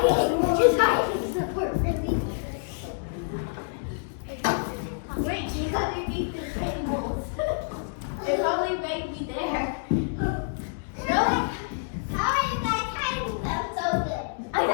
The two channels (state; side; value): silent; right; digital silence